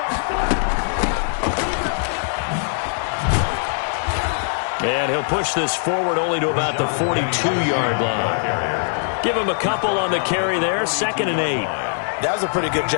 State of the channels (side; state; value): right; silent; 65 dB below the other